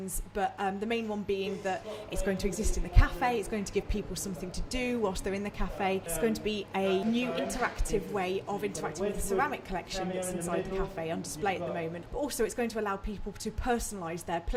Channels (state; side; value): identical; both; correlation 1.00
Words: but the main one being that it's going to exist in the cafe, it's going to give people something to do whilst they're in the cafe. It's going to be a new interactive way of interacting with the ceramic collection that's inside the cafe on display at the moment, but also it's going to allow people to personalise their